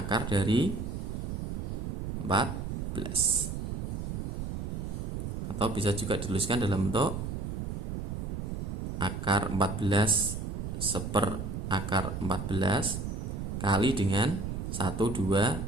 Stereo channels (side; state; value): right; noise; rumble, 4 dB below the sound